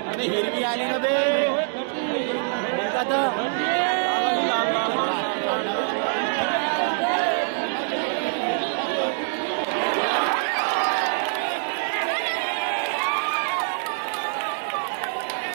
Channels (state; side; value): silent; left; digital silence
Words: अरे हिरवी आली ना बे